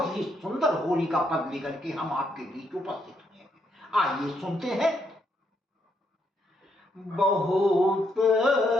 ही सुंदर होली का पद लेकर के हम आपके बीच उपस्थित हुए हैं। आइए सुनते हैं। बहुत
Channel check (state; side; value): normal; both; correlation 0.76